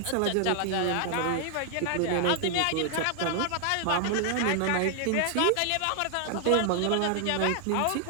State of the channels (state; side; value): different; both; correlation 0.00